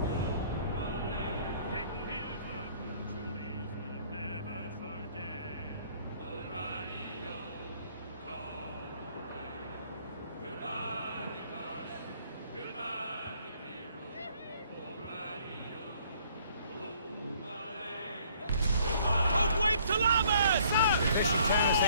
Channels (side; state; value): both; inverted; correlation -0.61